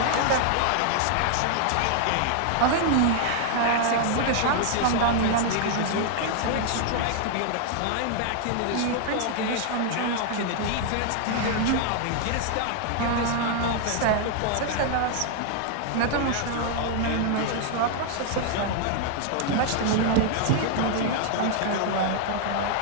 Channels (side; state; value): both; different; correlation 0.00